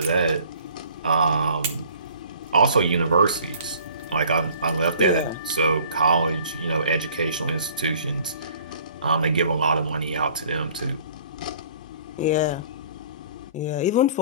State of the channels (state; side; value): inverted; both; correlation -0.52